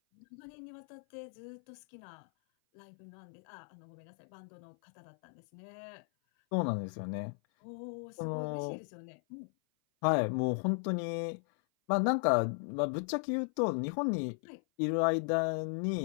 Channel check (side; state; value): right; silent; 54 dB below the other